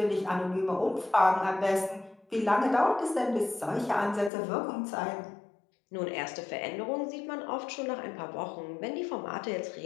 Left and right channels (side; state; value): right; drops out; at 4.3 s